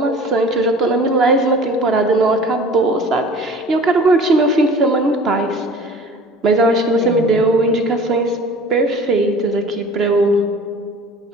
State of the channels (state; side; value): normal; both; correlation 0.44